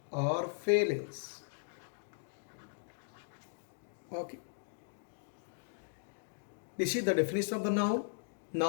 or feelings. Okay. This is the definition of the noun.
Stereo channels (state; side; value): silent; right; digital silence